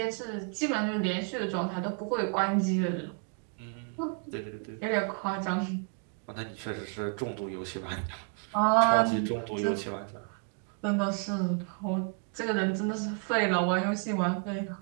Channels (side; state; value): left; quieter; 38.1 dB